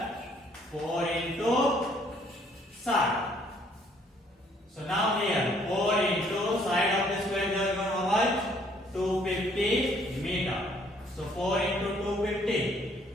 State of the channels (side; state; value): both; normal; correlation 0.63